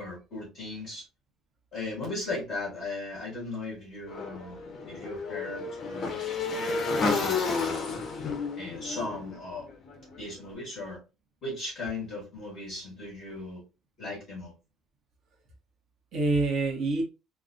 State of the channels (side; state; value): both; normal; correlation 0.59